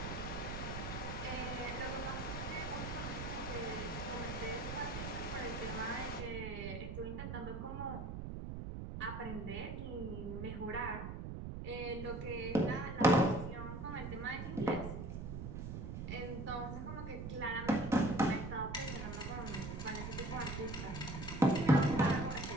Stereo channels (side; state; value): right; noise; rumble, 6 dB below the sound